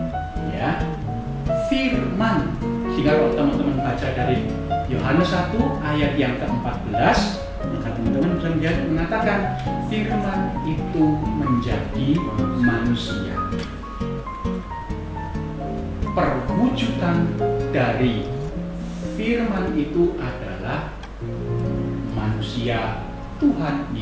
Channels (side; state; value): both; identical; correlation 1.00